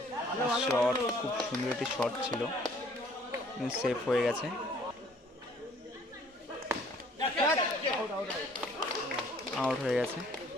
শট, খুব সুন্দর একটি শট ছিল, সেফ হয়ে গেছে। আউট হয়ে গেছে।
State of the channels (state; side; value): normal; both; correlation 0.58